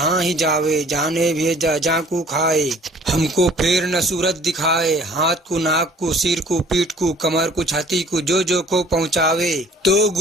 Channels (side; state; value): both; normal; correlation 0.52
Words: ही जावे जाने भेजा जाकू खाए हमको फेर न सूरत दिखाए हाथ को नाक को सिर को पीठ को कमर को छाती को जो को पहुँचावे तो